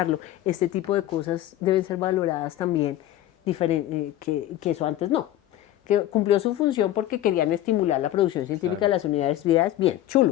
Este tipo de cosas deben ser valoradas también, que eso antes no. Que cumplió su función porque querían estimular la producción científica de las universidades. Bien,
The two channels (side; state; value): right; quieter; 13.4 dB